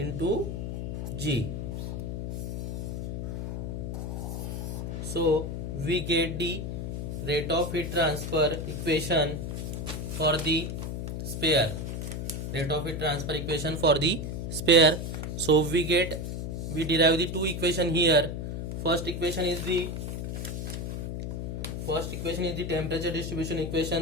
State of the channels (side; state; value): left; noise; hum, 4 dB below the sound